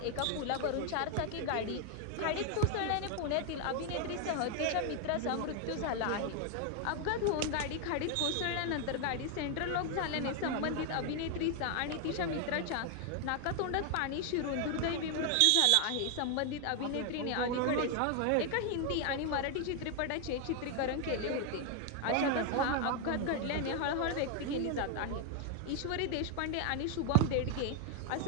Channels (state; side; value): different; both; correlation 0.00